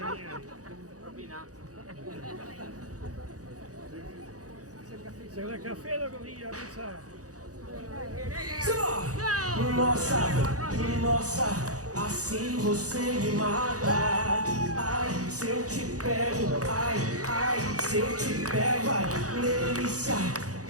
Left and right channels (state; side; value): late; left; 0.67 ms